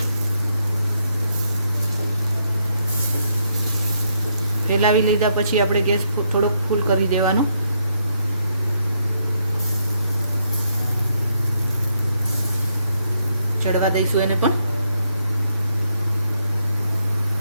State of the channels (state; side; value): inverted; both; correlation -0.77